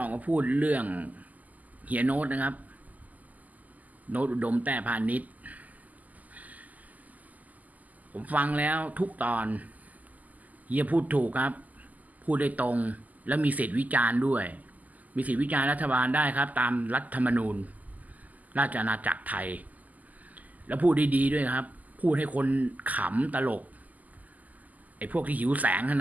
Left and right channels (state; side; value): late; left; 0.079 ms